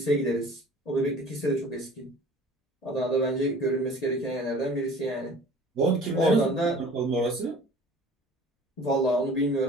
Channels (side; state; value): both; normal; correlation 0.46